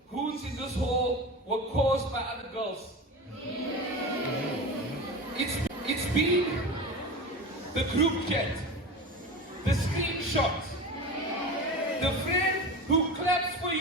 wounds in this hall were caused by other girls. It's been the group chat, the screenshot, the friend who claps for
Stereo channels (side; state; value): both; normal; correlation 0.28